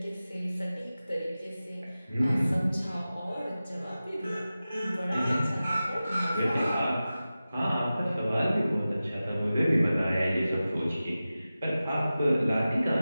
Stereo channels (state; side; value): inverted; both; correlation -0.95